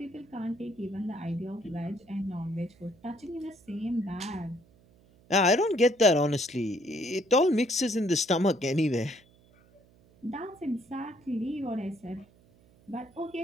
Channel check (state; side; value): noise; right; hum, 29 dB below the sound